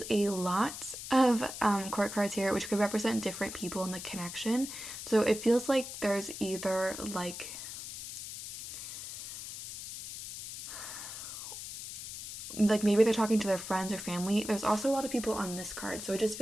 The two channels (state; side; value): noise; left; hiss, 9 dB below the sound